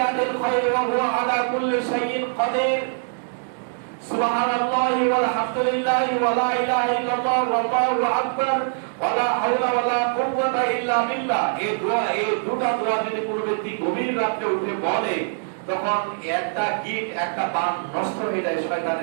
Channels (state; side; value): silent; left; digital silence